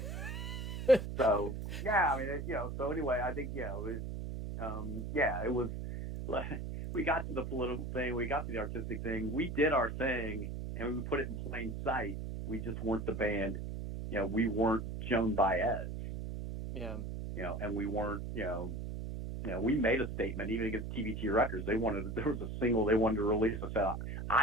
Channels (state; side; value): noise; right; hum, 5 dB below the sound